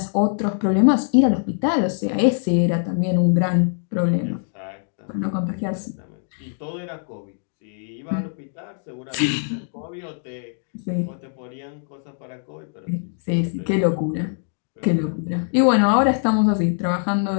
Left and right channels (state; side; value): silent; right; digital silence